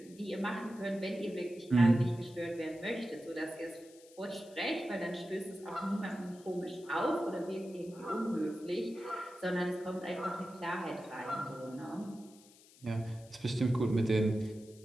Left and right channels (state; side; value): noise; left; hiss, 24 dB below the sound